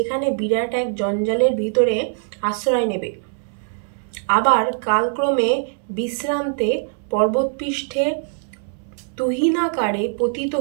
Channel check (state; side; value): silent; left; 64 dB below the other